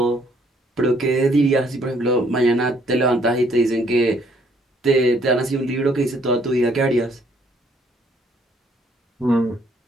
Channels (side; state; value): both; normal; correlation 0.65